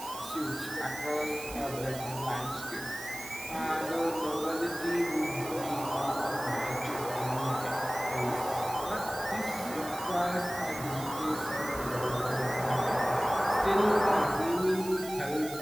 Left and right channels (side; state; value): right; noise; hiss, 12 dB below the sound